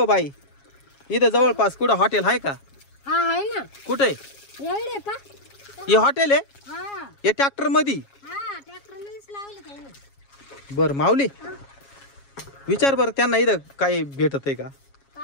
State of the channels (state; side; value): late; right; 7.3 ms